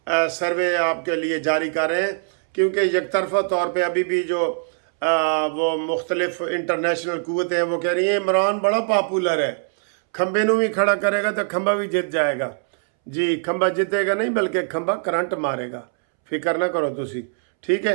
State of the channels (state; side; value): silent; left; 64 dB below the other